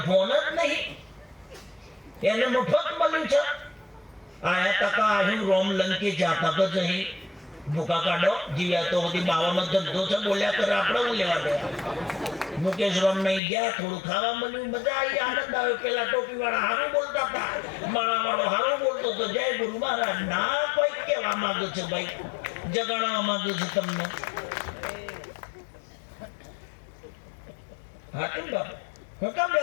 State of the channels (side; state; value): right; drops out; at 13.4 s